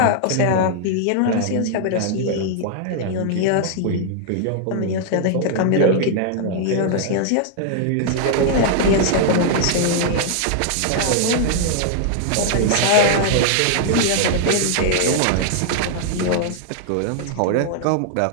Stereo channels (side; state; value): both; different; correlation 0.00